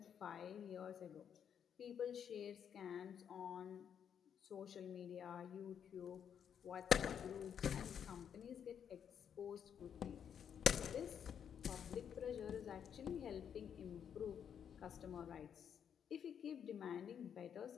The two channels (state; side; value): quieter; right; 8.3 dB